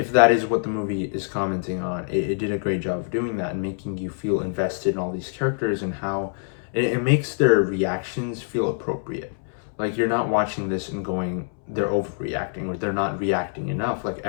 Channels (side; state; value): right; silent; 62 dB below the other